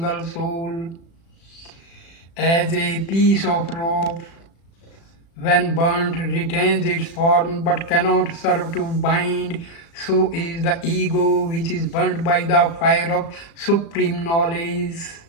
soul. As a piece of rope, when burnt, retains its form but cannot serve to bind, so is the ego which is burnt by the fire of supreme knowledge.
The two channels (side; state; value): right; late; 36 ms